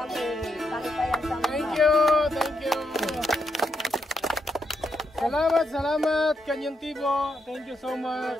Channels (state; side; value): normal; both; correlation 0.81